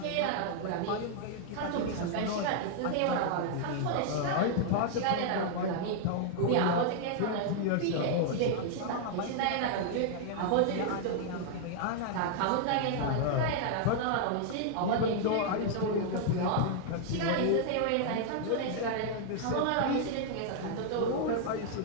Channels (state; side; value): different; both; correlation -0.01